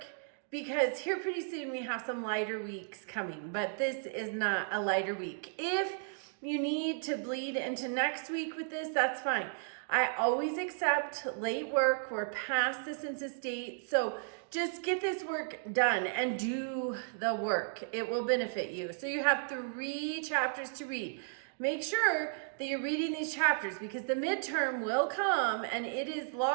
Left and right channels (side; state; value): left; silent; digital silence